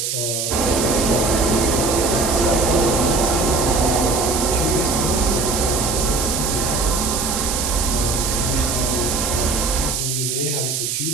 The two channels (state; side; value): noise; right; hiss, 2 dB below the sound